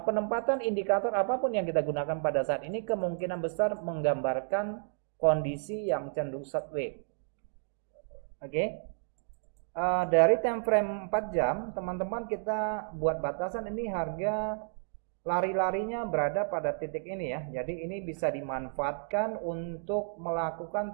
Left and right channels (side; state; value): left; silent; digital silence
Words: indikator apapun yang kita gunakan pada saat ini kemungkinan besar menggambarkan kondisi yang cenderung sideways. Oke. Dari time frame 4 jam, teman-teman kita buat batasan ini harga lari-larinya berada pada titik ini ya. Jadi ini bisa dimanfaatkan untuk melakukan